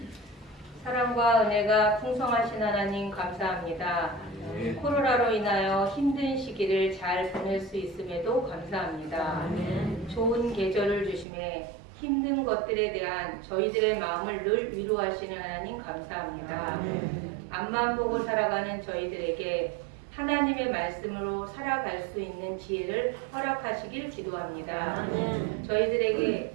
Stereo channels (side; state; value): left; drops out; at 11.2 s